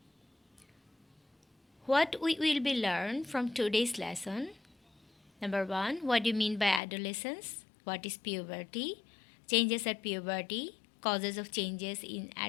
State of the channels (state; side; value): drops out; right; at 6.8 s